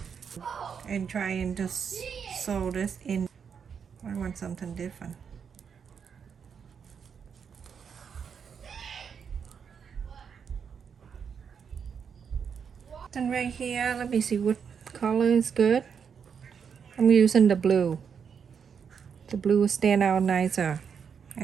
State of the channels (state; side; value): quieter; left; 6.8 dB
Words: and try and just sew this in. I want something different. And right here, let me see what color is good. I'm using the blue. The blue will stand out nicer